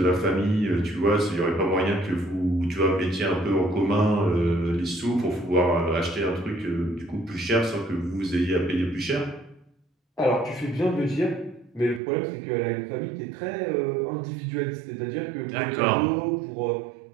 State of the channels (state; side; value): drops out; left; at 12.0 s